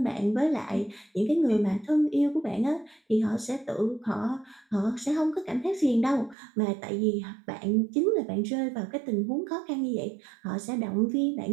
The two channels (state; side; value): drops out; left; at 6.4 s